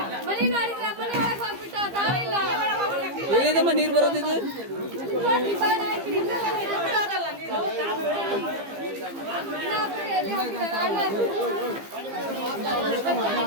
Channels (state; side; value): late; left; 15 ms